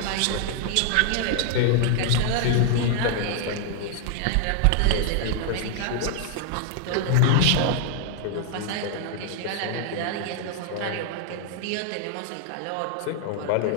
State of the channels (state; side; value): different; both; correlation 0.00